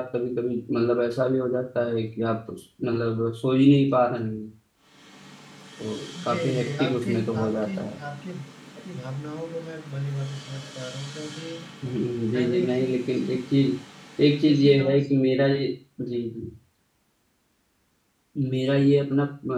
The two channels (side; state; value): both; identical; correlation 1.00